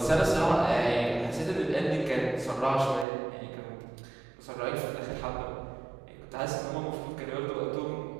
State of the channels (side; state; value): left; drops out; at 3.1 s